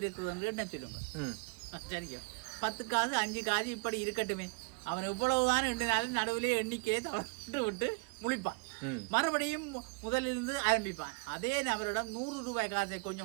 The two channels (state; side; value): quieter; left; 30.5 dB